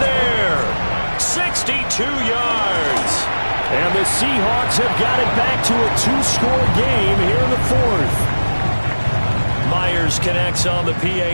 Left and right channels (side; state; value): both; inverted; correlation -1.00